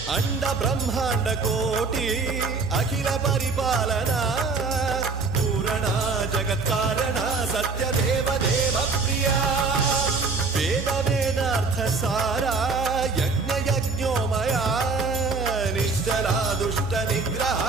अंड ब्रह्मांड कोटि अखिल परिपालना पूरणा जगत्कारणा सत्यदेव देव प्रिया वेद वेदार्थ सारा यज्ञ यज्ञोमया निश्चला दुष्ट निग्रह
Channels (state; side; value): quieter; left; 4.3 dB